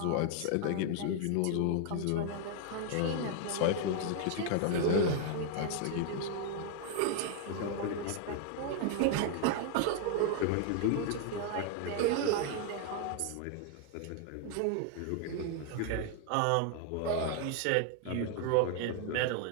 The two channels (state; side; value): different; both; correlation 0.00